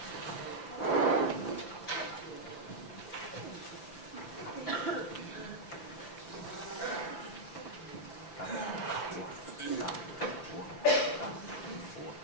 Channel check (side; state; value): right; late; 5.8 ms